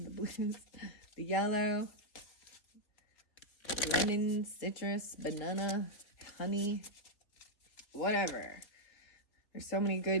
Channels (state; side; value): late; right; 3.4 ms